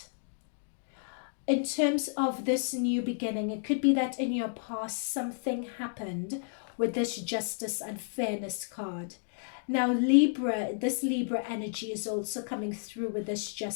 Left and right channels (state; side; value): silent; right; digital silence